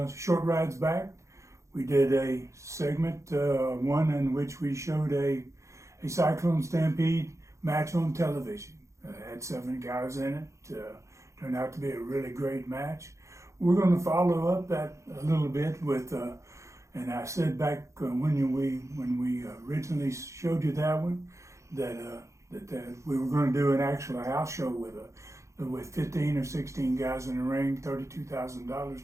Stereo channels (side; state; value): left; late; 0.14 ms